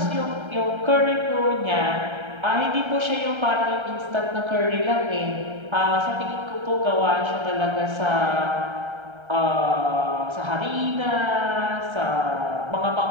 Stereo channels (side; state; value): left; late; 1.3 ms